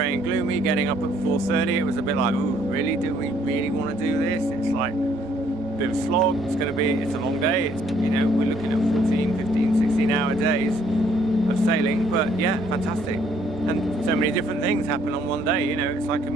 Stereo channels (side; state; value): both; normal; correlation 0.65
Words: and gloomy. Getting up at 4:30, it was a bit like, oh really, do we really want to do this? It's like a bit of a slog. It's a long day. You know, we're looking at 14, 15, 16-hour days of sailing, but yeah, fantastic. And so many different things happen on one day. You know, it's like a